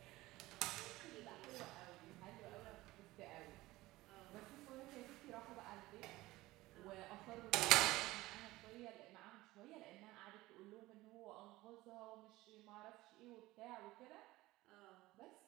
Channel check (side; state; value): left; quieter; 18.5 dB